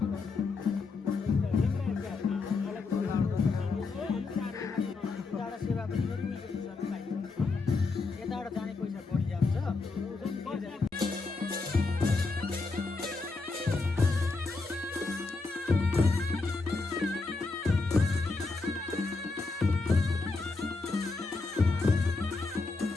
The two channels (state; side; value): quieter; right; 3.9 dB